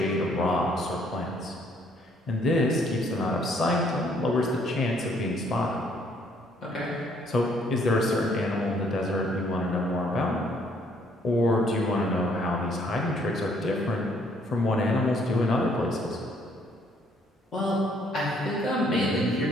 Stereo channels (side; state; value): both; normal; correlation 0.65